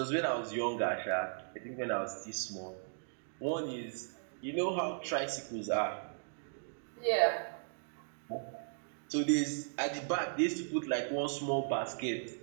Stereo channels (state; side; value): silent; left; digital silence